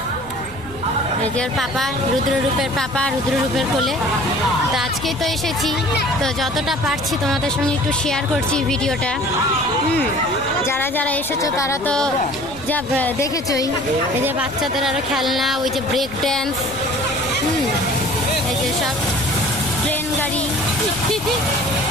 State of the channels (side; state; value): right; noise; rumble, 18 dB below the sound